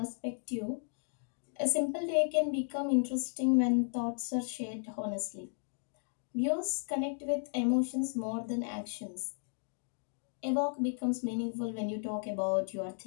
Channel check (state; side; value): silent; right; digital silence